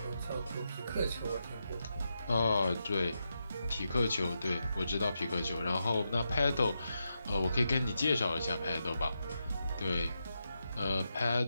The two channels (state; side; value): inverted; both; correlation -0.86